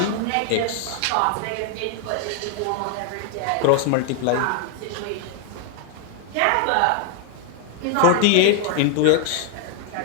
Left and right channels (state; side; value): different; both; correlation 0.00